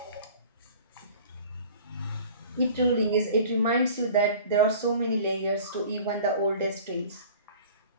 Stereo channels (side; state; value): both; inverted; correlation -0.45